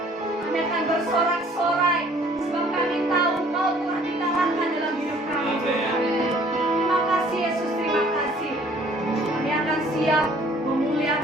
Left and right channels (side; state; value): both; normal; correlation 0.56